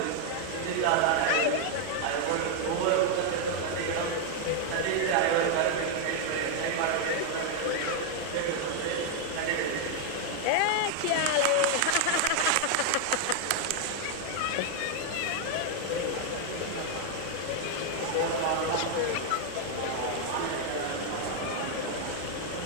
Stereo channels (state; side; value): different; both; correlation 0.00